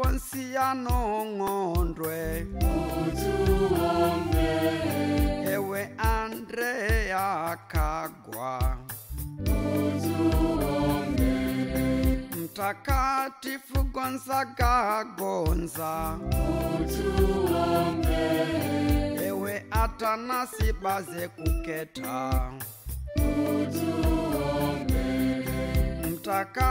Ng'ondwe, utuombe. Ewe Andrea Kagwa, utuombe. Mtakatifu Gonzaga Gonza, utuombe. Ewe Atanasi Baze Kuketa, utuombe.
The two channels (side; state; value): both; identical; correlation 1.00